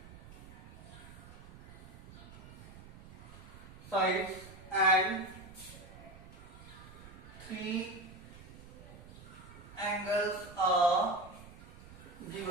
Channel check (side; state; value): right; noise; rumble, 16 dB below the sound